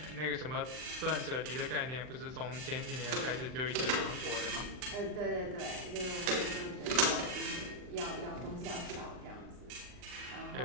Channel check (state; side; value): late; left; 39 ms